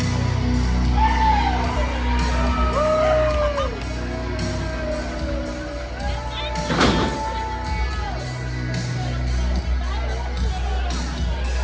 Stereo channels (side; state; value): both; identical; correlation 1.00